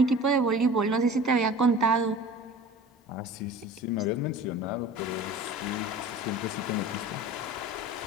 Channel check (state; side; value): normal; both; correlation 0.40